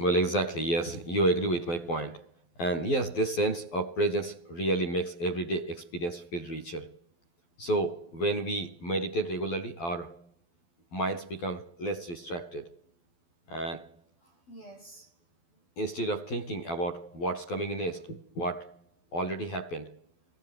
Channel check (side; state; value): right; late; 12 ms